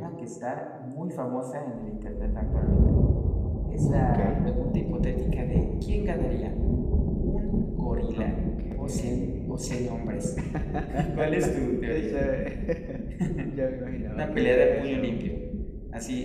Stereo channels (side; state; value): both; identical; correlation 1.00